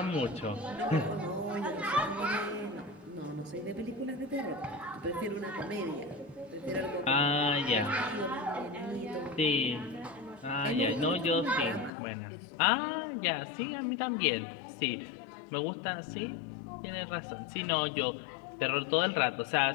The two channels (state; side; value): drops out; right; at 11.9 s